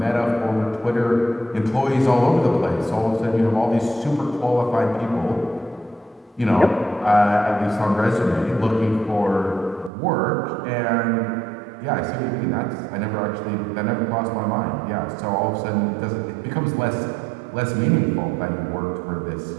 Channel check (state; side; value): drops out; left; at 9.9 s